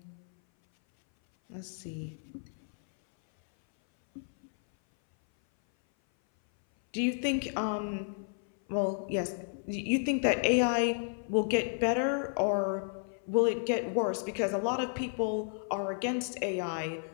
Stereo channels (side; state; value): right; silent; 56 dB below the other